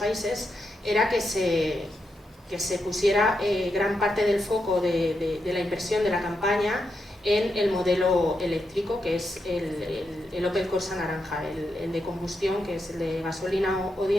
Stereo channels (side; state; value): both; normal; correlation 0.84